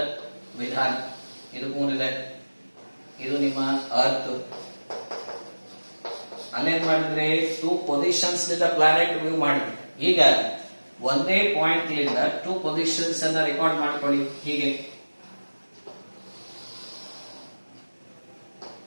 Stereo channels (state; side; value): inverted; both; correlation -1.00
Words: ವಿಧಾನ. ಇದು ಮೂನ್ ಇದೆ, ಇದು ನಿಮ್ಮ ಅರ್ತ್. ಅಲ್ಲೇನ್ ಮಾಡಿದ್ರೆ ಟೂ ಪೊಸಿಷನ್ಸ್ ನಿಂದ ಪ್ಲಾನೆಟ್ ವ್ಯೂ ಮಾಡಿದ್ವಿ. ಈಗ ಒಂದೇ ಪಾಯಿಂಟ್ ಲಿಂದ ಟೂ ಪೊಸಿಷನ್ಸ್ ಅನ್ನ ರೆಕಾರ್ಡ್ ಮಾಡ್ಕೊಳ್ಳಿ. ಹೀಗೆ